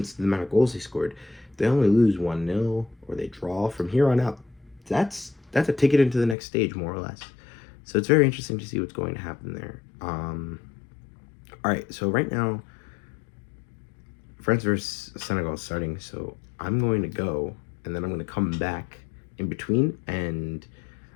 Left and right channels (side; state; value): right; drops out; at 6.4 s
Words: the amount of goals they scored, they only lose 1-0 or they draw from here on out. That's a ticket into the next stage, more or less. So it's very interesting to see what's going to happen there. All right, so right now, France versus Senegal is starting. So I'm going to go, and then I'm going to come back in between